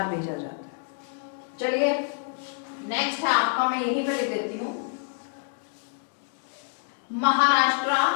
भेजा जाता है। चलिए, नेक्स्ट है आपका, मैं यहीं पे लिख देती हूँ, महाराष्ट्र,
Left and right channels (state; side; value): silent; right; 60 dB below the other